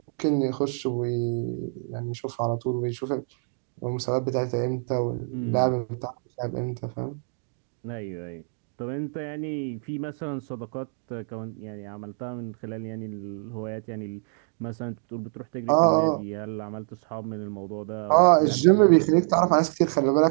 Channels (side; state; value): left; silent; 61 dB below the other